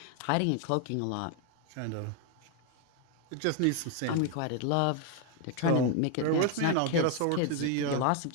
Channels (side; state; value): both; different; correlation 0.01